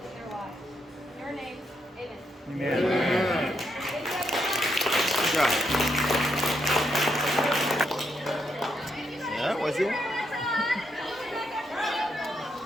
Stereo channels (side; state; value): both; normal; correlation 0.79